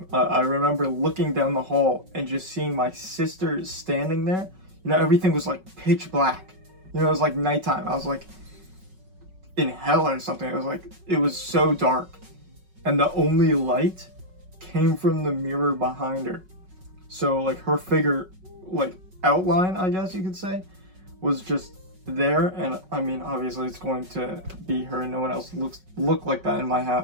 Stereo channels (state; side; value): late; left; 5.4 ms